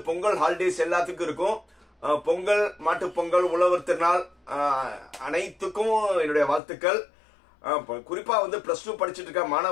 பொங்கல் ஹாலிடேஸ் எல்லாத்துக்கும் இருக்கும். பொங்கல், மாட்டுப் பொங்கல், உழவர் திருநாள் அனைத்துக்கும் என்னுடைய வாழ்த்துக்கள். குறிப்பா வந்து +2 படிச்சுட்டு இருக்க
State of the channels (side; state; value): right; drops out; at 6.6 s